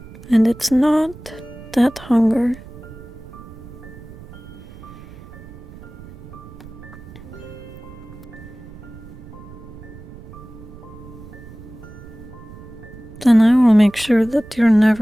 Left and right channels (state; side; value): noise; right; rumble, 17 dB below the sound